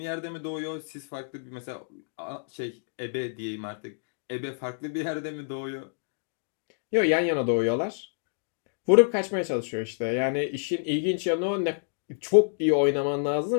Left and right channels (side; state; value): right; silent; digital silence